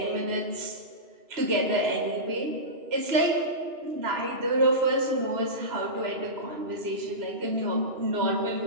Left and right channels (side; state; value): left; late; 3.0 ms